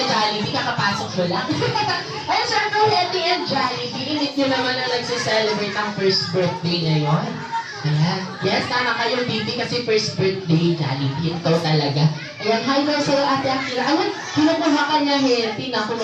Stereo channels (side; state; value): both; identical; correlation 1.00